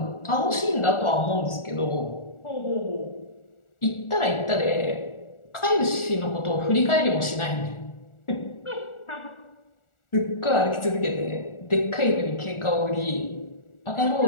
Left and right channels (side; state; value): right; late; 1.4 ms